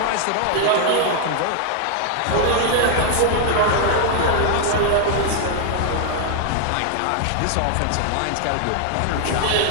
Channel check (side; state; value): both; different; correlation 0.00